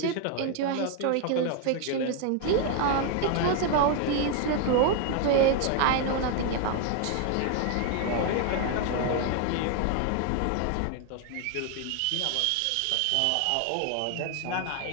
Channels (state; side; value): different; both; correlation 0.01